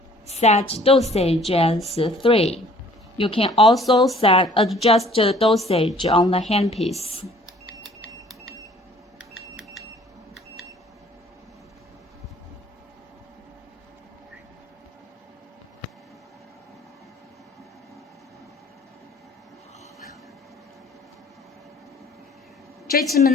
set dosage as 3. You can also adjust the dosage on the handpiece.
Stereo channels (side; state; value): both; normal; correlation 0.55